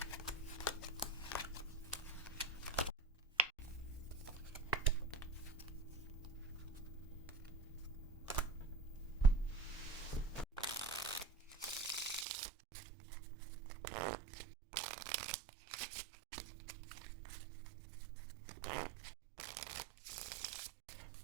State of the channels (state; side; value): drops out; left; at 12.2 s